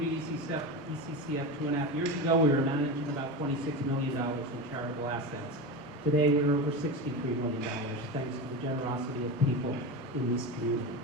ECCF 2.5 years ago, we were managing about $26 million in charitable assets. Today, we're over $63 million, thanks to the generosity of people in this community.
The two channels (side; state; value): both; normal; correlation 0.22